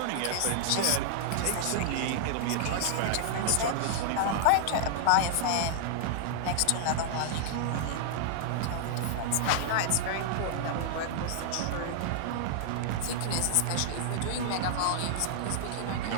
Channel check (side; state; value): both; different; correlation -0.01